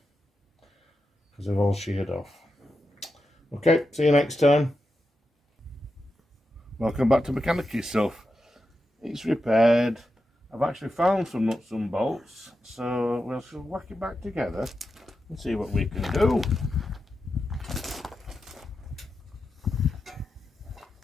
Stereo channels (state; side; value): normal; both; correlation 0.89